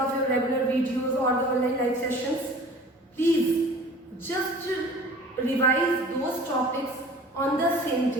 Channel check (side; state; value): both; normal; correlation 0.45